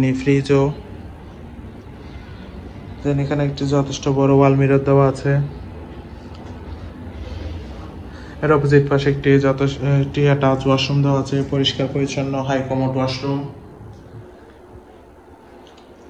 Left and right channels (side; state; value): both; identical; correlation 1.00